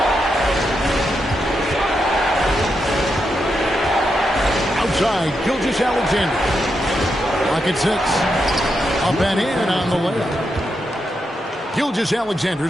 Outside, Gilgeous-Alexander. Lock at 6. Up and in on the layup.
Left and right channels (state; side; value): normal; both; correlation 0.84